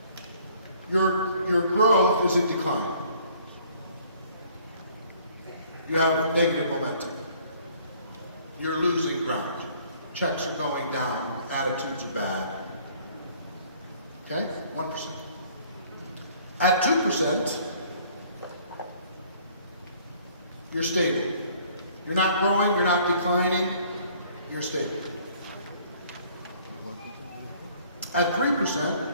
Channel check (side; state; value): both; inverted; correlation -0.58